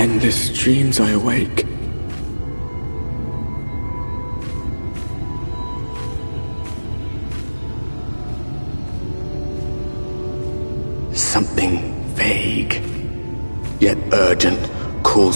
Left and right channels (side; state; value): both; inverted; correlation -1.00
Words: dreams I awake. Something vague, yet urgent,